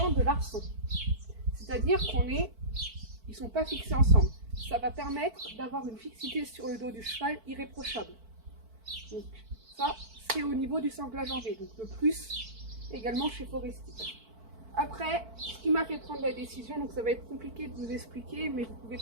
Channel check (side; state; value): left; late; 4.5 ms